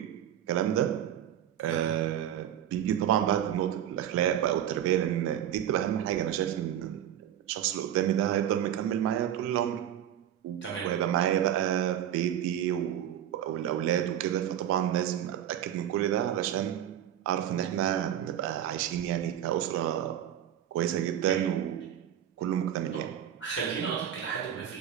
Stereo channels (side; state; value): left; quieter; 10.6 dB